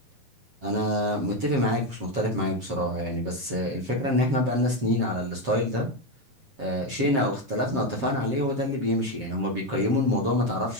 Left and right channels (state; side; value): late; left; 7.5 ms